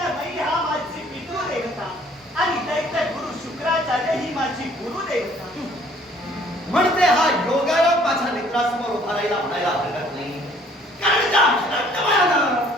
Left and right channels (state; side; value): normal; both; correlation 0.58